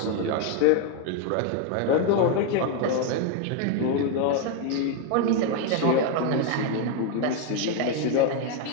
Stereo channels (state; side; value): different; both; correlation 0.01